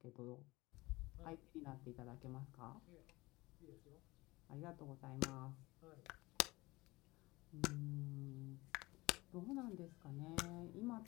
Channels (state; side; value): quieter; right; 21.3 dB